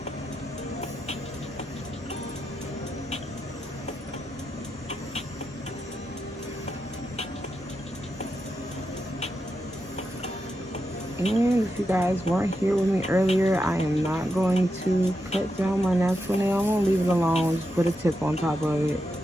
And if you guys weren't here with me earlier, I am not going to cut down my natural nail. I'm gonna leave it alone, just put a tip on top of it.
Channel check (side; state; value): both; normal; correlation 0.86